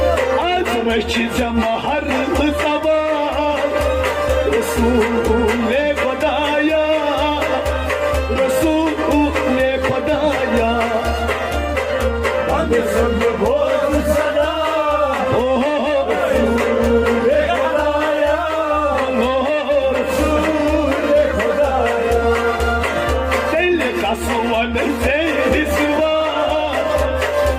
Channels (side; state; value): both; identical; correlation 1.00